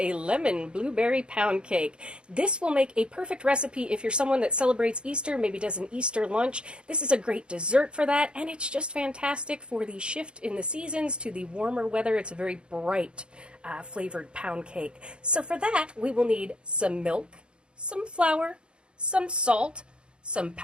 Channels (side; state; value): left; late; 0.054 ms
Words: lemon blueberry pound cake. This will make a perfect recipe if you're someone that celebrates Easter, maybe does an Easter lunch. This is a great dessert for that, and it's just fantastic for the shift in the seasons to the warmer weather. It's a very bright flavored pound cake. So for that, we will need some milk, some flour, some salt, some